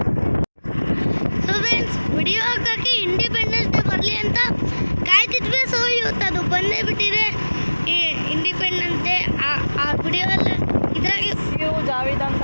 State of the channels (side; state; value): both; inverted; correlation -1.00